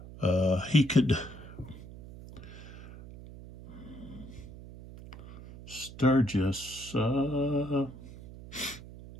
he could, Sturgis,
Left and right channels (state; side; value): noise; right; hum, 15 dB below the sound